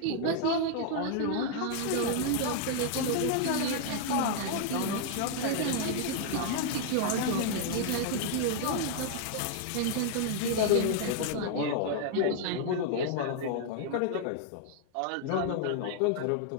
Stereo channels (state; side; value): different; both; correlation 0.00